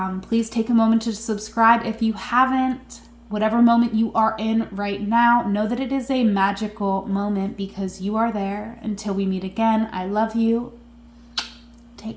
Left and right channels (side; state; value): both; identical; correlation 1.00